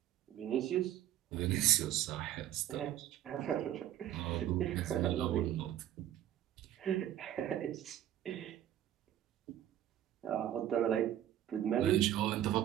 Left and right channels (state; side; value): quieter; left; 11.8 dB